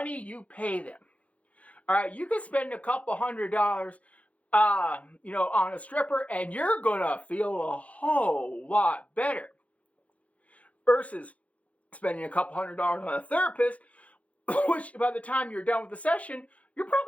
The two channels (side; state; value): right; late; 0.066 ms